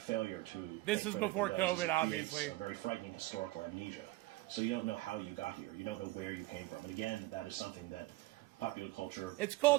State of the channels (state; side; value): quieter; left; 19.3 dB